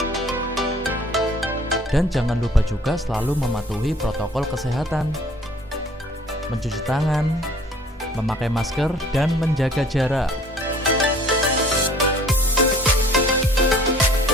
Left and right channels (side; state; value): both; normal; correlation 0.53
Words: Dan jangan lupa juga selalu mematuhi protokol kesehatan, mencuci tangan, memakai masker, dan menjaga jarak.